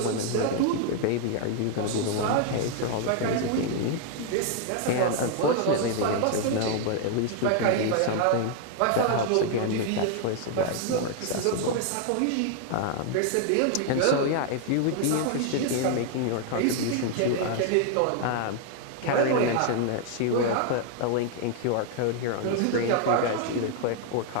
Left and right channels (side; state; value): both; different; correlation 0.00